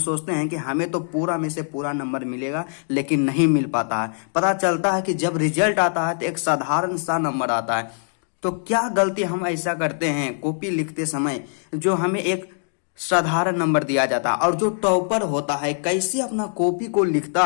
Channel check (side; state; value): right; silent; digital silence